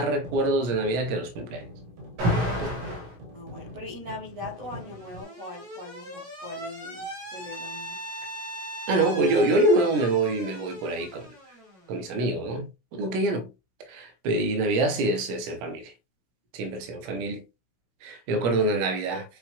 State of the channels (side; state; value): left; late; 16 ms